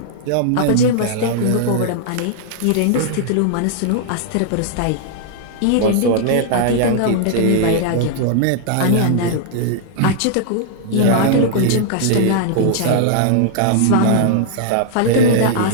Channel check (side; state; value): both; different; correlation -0.01